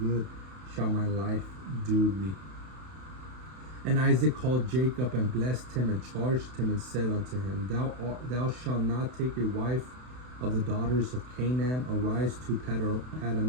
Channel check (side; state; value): left; late; 32 ms